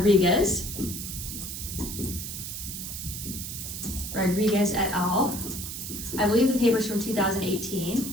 et al. I believe the paper's from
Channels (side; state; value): right; noise; hiss, 7 dB below the sound